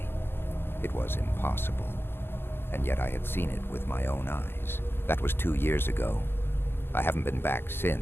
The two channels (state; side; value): late; right; 0.11 ms